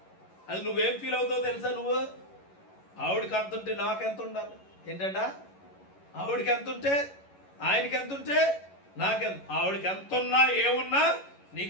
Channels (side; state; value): right; late; 11 ms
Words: అది నువ్వేం ఫీల్ అవుతావో తెలుసా? నువ్వు ఆవిడకి ఎంత ఉంటే నాకెంత ఉండాలి ఏంటంట? ఆవిడకి ఎంత ఉంటే ఆయనకి ఎంత ఉంటే నాకెంత. ఆవిడకి ఎంత ఉన్నా ఏమున్నా